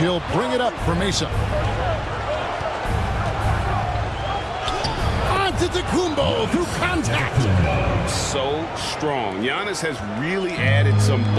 bring it up for Mesa. Antetokounmpo through contact. So strong. Giannis has really added some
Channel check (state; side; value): identical; both; correlation 1.00